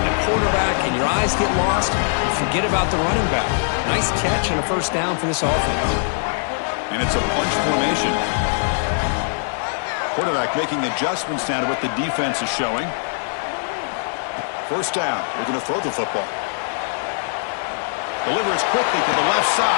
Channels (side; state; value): right; silent; digital silence